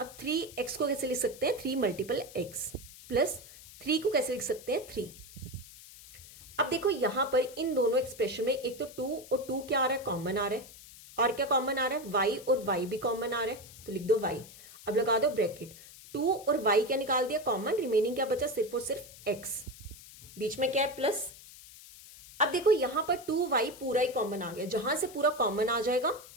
अब 3x को कैसे लिख सकते हैं, 3 × x प्लस 3 को कैसे लिख सकते हैं 3। अब देखो यहां पर इन दोनों एक्सप्रेशन में एक तो 2 और 2 क्या आ रहा है, कॉमन आ रहा है, और क्या कॉमन आ रहा है, y और y भी कॉमन आ रहा है, तो लिख दो y। अब लगा दो ब्रैकेट, 2 और y क्या निकाल दिया कॉमन, रिमेनिंग क्या बचा सिर्फ और सिर्फ x, बीच में क्या है प्लस। अब देखो यहां पर 2y पूरा ही कॉमन आ गया, जहां से पूरा कॉमन आ जाएगा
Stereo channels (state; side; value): noise; left; hiss, 18 dB below the sound